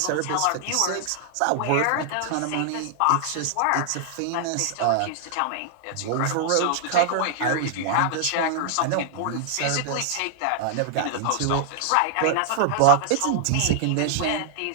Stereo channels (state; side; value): different; both; correlation 0.00